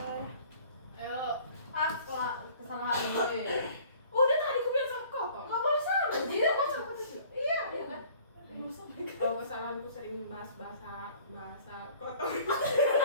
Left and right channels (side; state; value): both; inverted; correlation -0.52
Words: Ayo. Apa kesalahan gue? Udah tadi aku bilang sama kau. Nggak boleh sama. Jadi apa sama? Iya, iya kan? Kalau kesalahanku sering bahasa kotor.